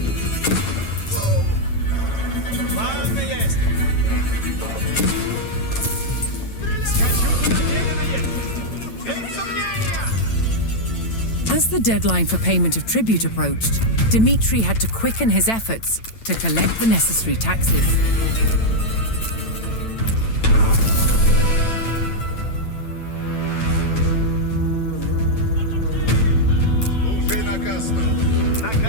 Ладно есть. Скачу, куда велено есть. Без сомнения. As the deadline for payment of tribute approached, Dmitri had to quicken his efforts to collect the necessary taxes. Слушай наказ.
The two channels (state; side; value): late; right; 9.0 ms